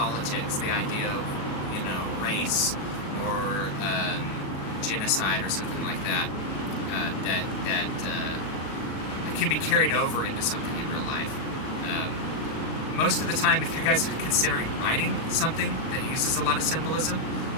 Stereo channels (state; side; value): late; right; 37 ms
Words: the idea of race or genocide or something like that. That can be carried over into something in real life. Most of the time, if you guys are considering writing something that uses a lot of symbolism,